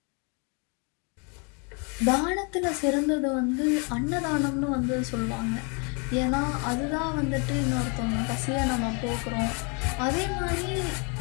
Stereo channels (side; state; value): right; quieter; 34.7 dB